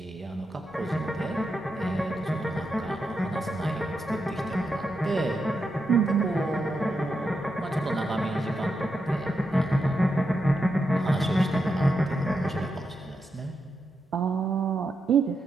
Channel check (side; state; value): both; normal; correlation 0.85